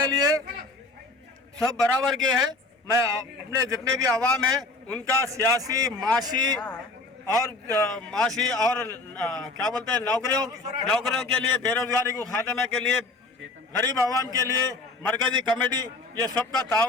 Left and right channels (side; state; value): right; quieter; 3.3 dB